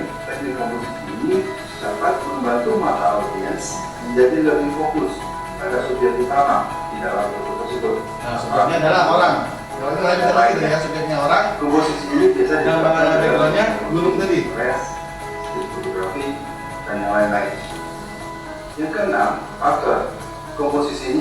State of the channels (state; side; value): identical; both; correlation 1.00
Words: teknik komposisi ini dapat membantu mata audiens menjadi lebih fokus pada subjek utama di dalam foto tersebut. Nah, subjeknya adalah orang. Kalau itu lagi kita lagi ya, subjeknya orang. Komposisi ini biasa Dan backgroundnya gunung tadi. press, street fotografi, dan yang lain-lain. Yang keenam, pattern. Komposisi